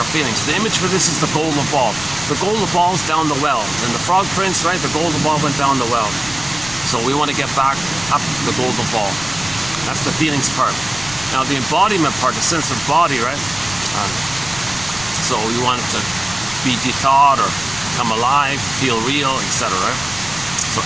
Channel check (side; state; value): left; noise; rumble, 16 dB below the sound